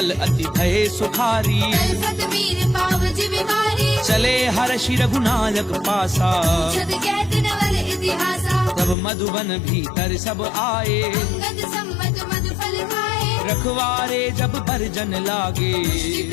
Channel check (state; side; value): drops out; right; at 9.0 s